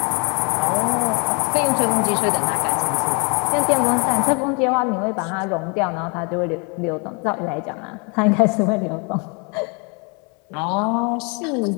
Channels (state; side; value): quieter; right; 33.5 dB